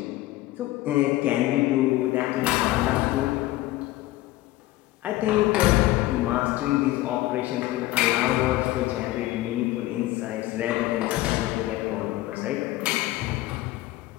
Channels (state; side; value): quieter; right; 16.9 dB